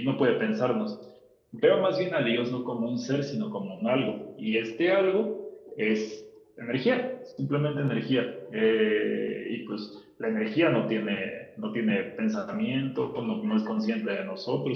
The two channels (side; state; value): both; identical; correlation 1.00